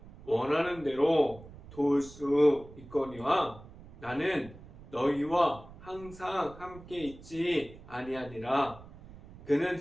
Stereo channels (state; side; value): noise; right; rumble, 18 dB below the sound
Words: 원하는 대로 도울 수 있거니와 나는 너희와 항상 함께 있지 아니하니라. 그는